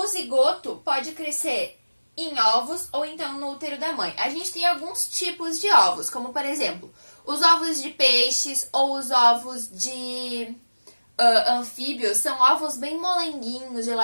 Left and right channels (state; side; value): inverted; both; correlation -1.00